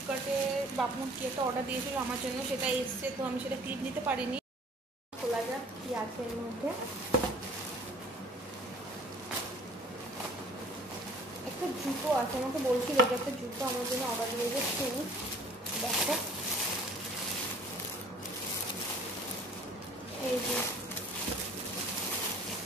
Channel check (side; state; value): both; normal; correlation 0.51